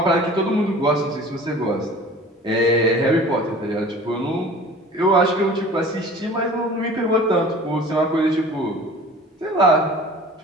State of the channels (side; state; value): both; normal; correlation 0.44